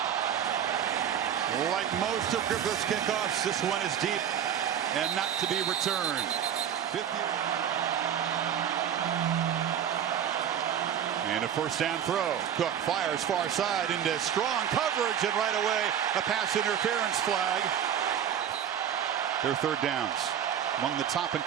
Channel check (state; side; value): quieter; left; 9.2 dB